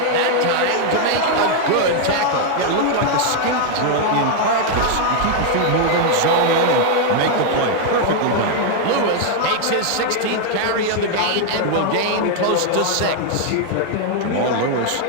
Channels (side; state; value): both; different; correlation 0.00